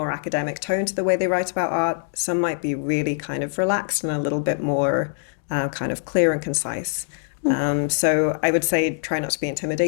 academic tone to the way they write about art. Some might be really kind of relaxed and a little bit more kind of clear and concise. So I would say try not to be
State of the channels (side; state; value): right; silent; digital silence